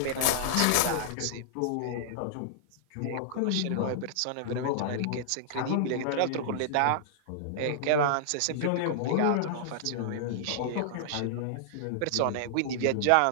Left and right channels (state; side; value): different; both; correlation -0.01